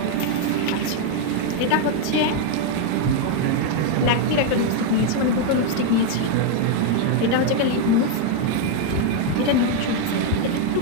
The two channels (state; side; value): different; both; correlation 0.01